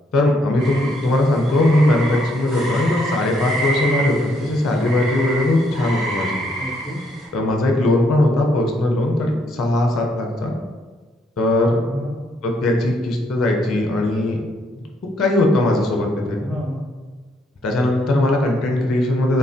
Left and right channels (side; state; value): both; normal; correlation 0.72